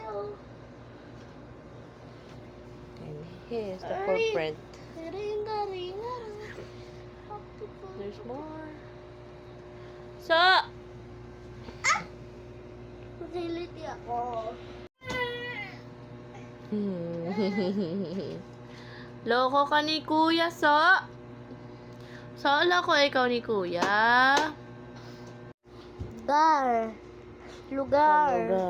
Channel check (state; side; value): identical; both; correlation 1.00